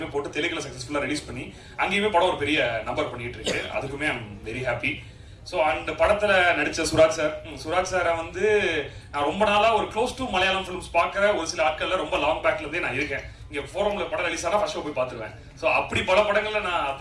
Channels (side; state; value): both; identical; correlation 1.00